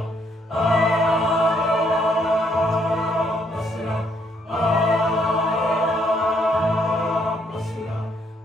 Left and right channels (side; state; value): both; normal; correlation 0.70